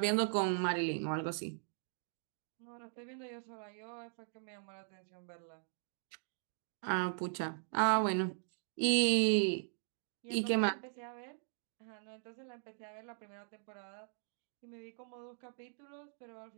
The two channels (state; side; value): silent; left; digital silence